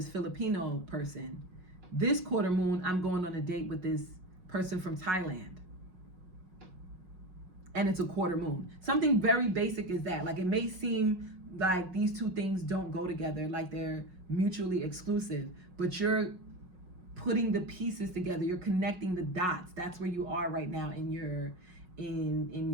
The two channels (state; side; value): late; left; 5.4 ms